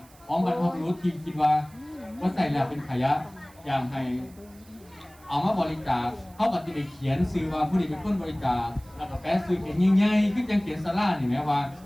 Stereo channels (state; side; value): noise; right; hiss, 26 dB below the sound